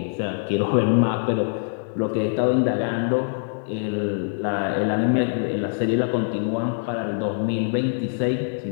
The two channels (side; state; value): right; silent; 57 dB below the other